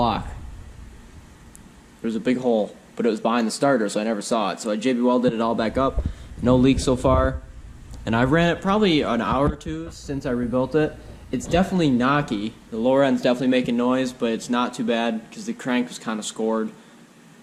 There was a big hole, but it was behind the starter, so I never saw it. So I JB welded it all back up. No leaks so far. And I ran it probably an hour or two since I rebuilt it. It's definitely knocky. The lower end's definitely making noise, but it's not too bad because the crank was kind of scored.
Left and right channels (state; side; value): identical; both; correlation 1.00